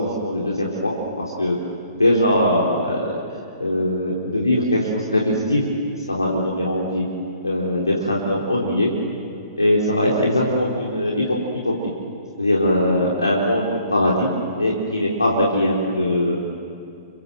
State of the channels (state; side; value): inverted; both; correlation -0.66